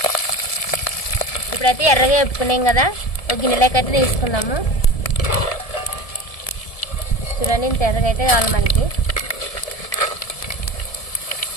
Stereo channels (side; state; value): right; late; 1.7 ms